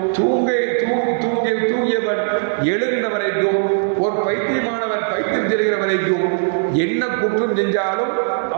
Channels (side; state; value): left; silent; 66 dB below the other